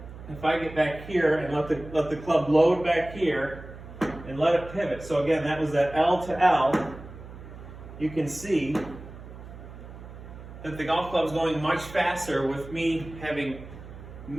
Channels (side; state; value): right; noise; hum, 15 dB below the sound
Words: if I get back here and let the club load back here and let it pivot. So again, that was that L to L. You can see that the golf club is going much faster with me having